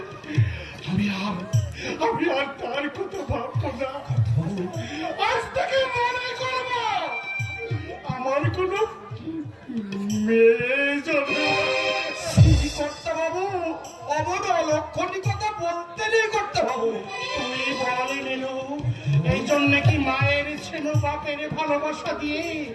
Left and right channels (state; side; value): identical; both; correlation 1.00